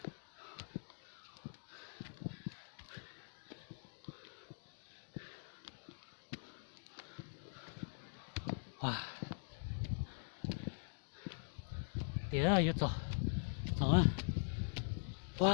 wow tía ơi rồi rồi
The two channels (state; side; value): silent; right; digital silence